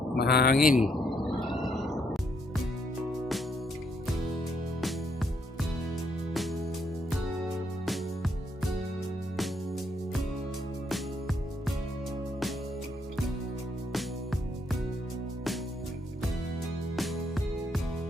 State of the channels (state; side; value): normal; both; correlation 0.73